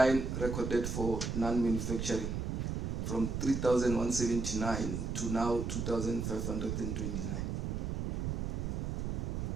recorded for non-manufacturing from 3,179 to now 2,529.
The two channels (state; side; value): noise; right; rumble, 2 dB below the sound